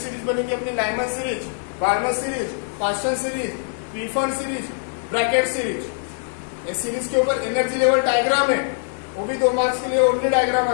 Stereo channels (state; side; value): silent; right; 64 dB below the other